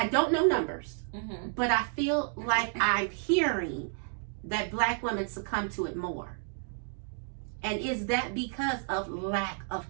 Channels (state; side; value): silent; left; 57 dB below the other